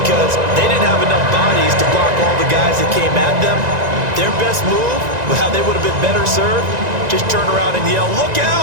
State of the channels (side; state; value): left; late; 1.9 ms